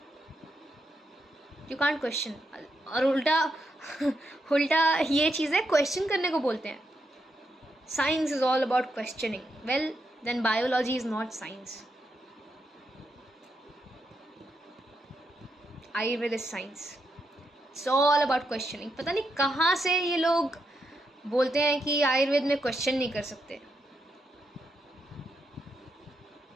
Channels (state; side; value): normal; both; correlation 0.82